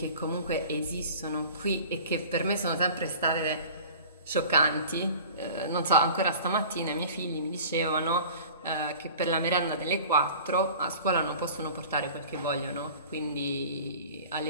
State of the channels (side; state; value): both; inverted; correlation -0.42